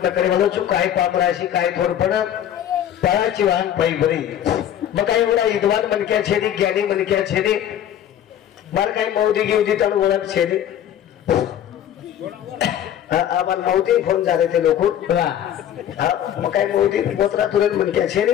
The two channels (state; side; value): quieter; right; 10.5 dB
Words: करे वालो चु काय पामराशी काय थोडपण पळाची वाहन पायी बरी मग काही एवढा विद्वान मनक्या छेदी ज्ञानी मनक्या छेदी मार काही मौदी गिवदी तण ओळख छेदी आम्हाला मौदी फोन झाले ते लोक मग काही मौदी ओतरा तुरंत मनक्या छेदी